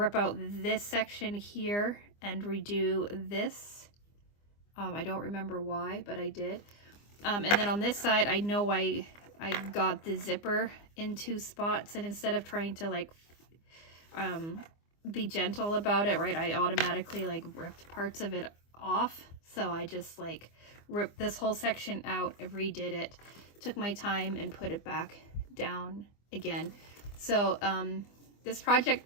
out this section here and redo this. I don't remember why, but I did. And then on this side, I know I got the zipper in two spots, and instead of trying to like be gentle about it, right, I automatically like ripped parts of it off. So I just like ripped this whole section out and redid it, took my time and put it back down again. So this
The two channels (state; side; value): late; right; 24 ms